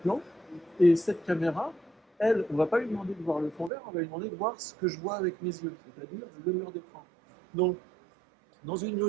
et cette caméra, elle, on ne va pas lui demander de voir le fond vert, on va lui demander de voir ce que je vois avec mes yeux, c'est-à-dire le mur d'écran. Donc, dans une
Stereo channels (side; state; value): left; drops out; at 3.7 s